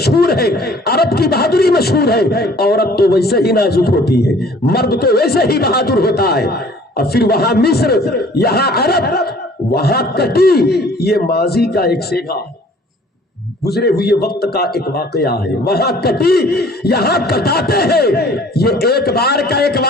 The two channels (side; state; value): both; normal; correlation 0.53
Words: ہے، عرب کی بہادری مشہور ہے۔ عورت تو ویسے ہی نازک ہوتی ہے، مرد تو ویسے ہی بہادر ہوتا ہے۔ اور پھر وہاں مصر یہاں عرب، وہاں کٹی، یہ ماضی کا ایک سیگا، گزرے ہوئے وقت کا ایک واقعہ ہے۔ وہاں کٹی یہاں کٹاتے ہیں، یہ ایک بار کا ایک